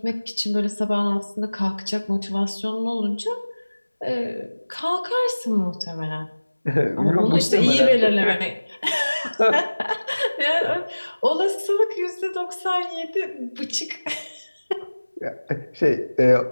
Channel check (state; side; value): inverted; both; correlation -1.00